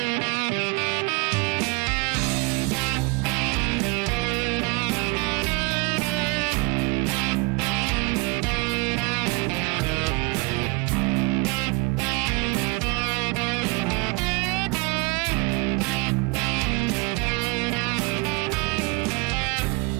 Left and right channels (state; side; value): quieter; left; 26.3 dB